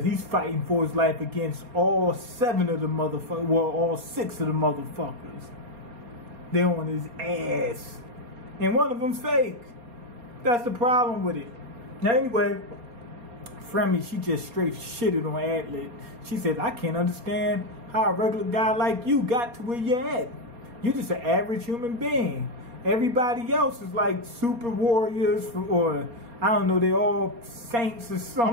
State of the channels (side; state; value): left; late; 4.2 ms